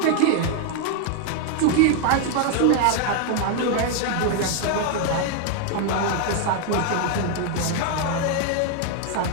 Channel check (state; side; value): different; both; correlation 0.00